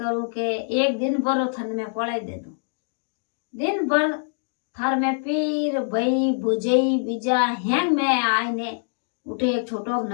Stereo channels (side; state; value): right; silent; digital silence